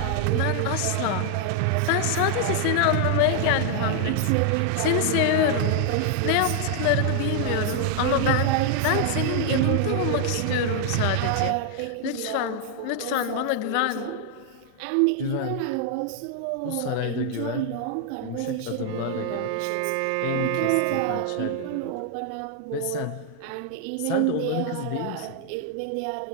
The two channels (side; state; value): both; different; correlation 0.00